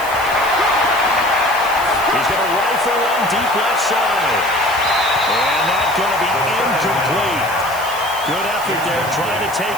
He's going to rifle one deep left side. And that's going to be incomplete. Good effort there, trying to take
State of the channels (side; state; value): right; noise; hiss, 13 dB below the sound